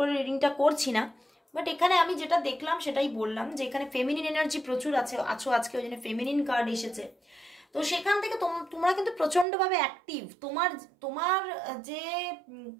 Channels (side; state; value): left; drops out; at 9.5 s